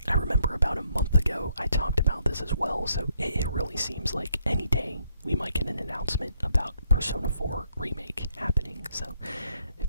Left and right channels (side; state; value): both; inverted; correlation -0.73